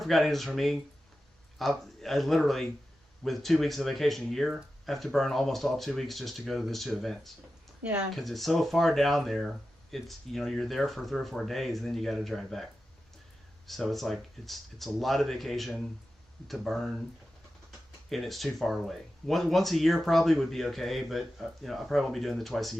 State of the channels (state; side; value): normal; both; correlation 0.92